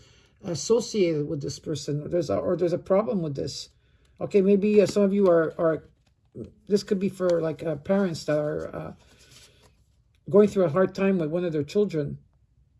associated with this person. There's a problem with this. Okay, maybe some of you are this could be for like parents that are going through a hard time with one of their children.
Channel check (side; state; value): both; identical; correlation 1.00